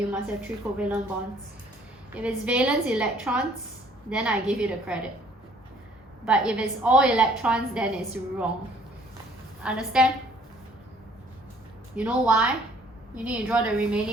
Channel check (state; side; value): normal; both; correlation 0.59